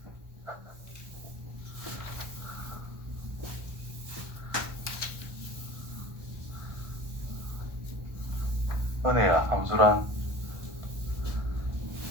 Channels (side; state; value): left; late; 1.2 ms